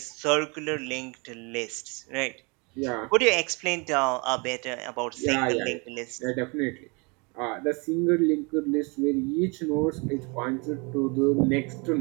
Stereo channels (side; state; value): left; quieter; 30.5 dB